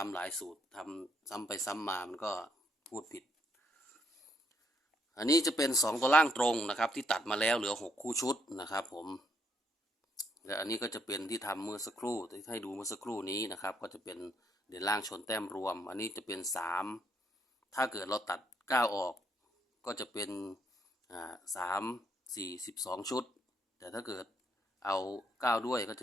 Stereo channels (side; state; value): both; normal; correlation 0.74